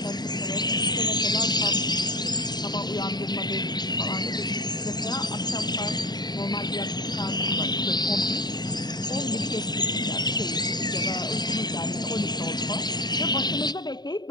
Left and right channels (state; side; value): late; right; 0.20 ms